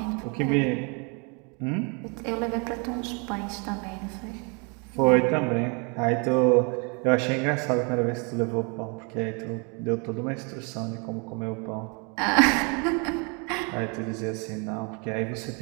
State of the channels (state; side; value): quieter; left; 33.7 dB